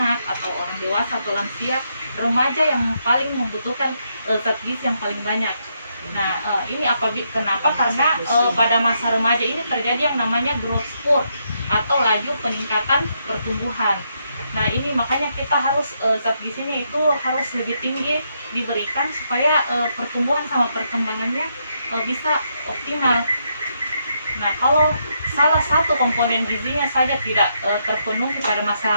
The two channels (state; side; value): inverted; both; correlation -0.78